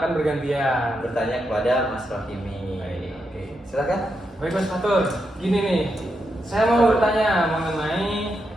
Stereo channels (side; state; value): both; normal; correlation 0.84